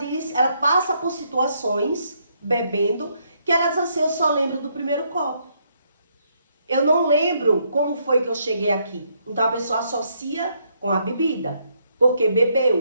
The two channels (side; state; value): both; inverted; correlation -0.74